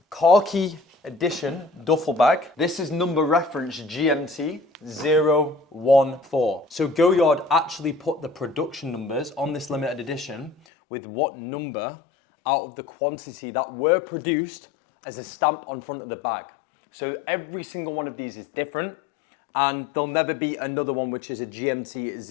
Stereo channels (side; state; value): right; drops out; at 10.6 s